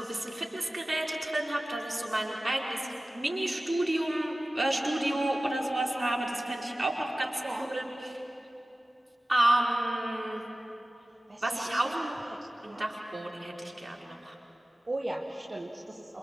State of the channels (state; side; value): normal; both; correlation 0.97